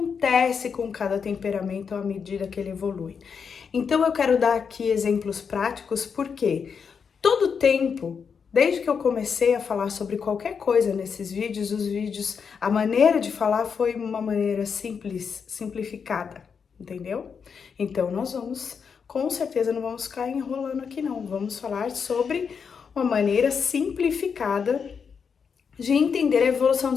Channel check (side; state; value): right; quieter; 6.3 dB